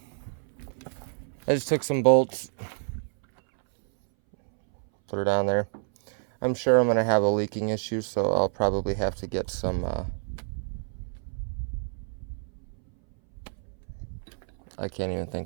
I just took some bolts. Put her down there. I'm sure I'm going to have a leaking issue, so I'll probably have to get some I can't even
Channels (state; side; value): silent; left; 59 dB below the other